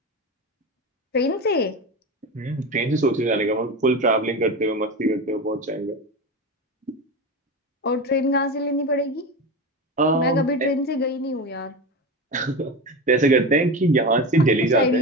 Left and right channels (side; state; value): both; normal; correlation 0.23